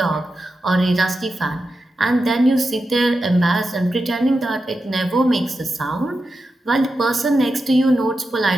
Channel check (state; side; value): normal; both; correlation 0.90